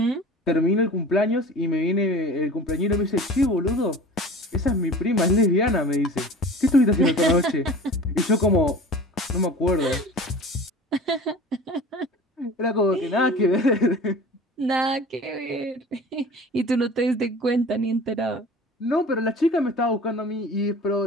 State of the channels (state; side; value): normal; both; correlation 0.40